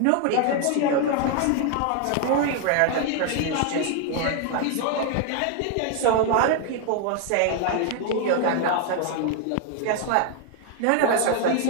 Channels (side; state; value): both; different; correlation 0.01